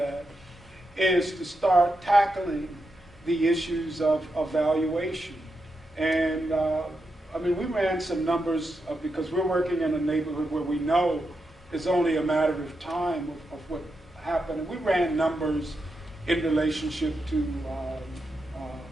is to start tackling the issues of valuation. And I mean, we ran some numbers because we're working in a neighborhood where we know it's only a matter of time of what happened. And we ran numbers in relationship to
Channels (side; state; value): both; normal; correlation 0.86